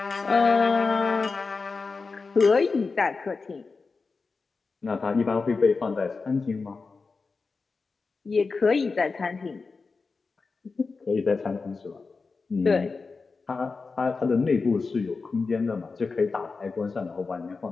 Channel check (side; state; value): right; quieter; 4.4 dB